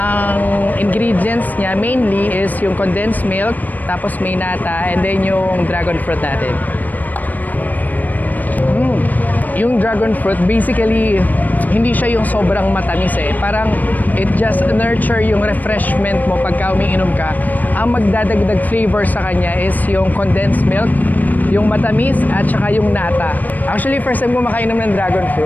ingredients niya mainly is yung condensed milk, tapos may nata, and then yung dragon fruit natin. Yung dragon fruit, basically, hindi siya yung sobrang matamis eh. Parang it just nurture yung refreshment mo pagka umiinom ka. Ang magdadagdag flavor sa kanya is yung condensed milk, yung matamis, at saka yung nata. Actually, first time ko makainom ng dragon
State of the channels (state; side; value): late; right; 0.083 ms